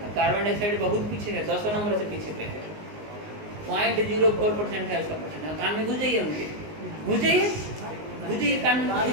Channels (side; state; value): left; late; 19 ms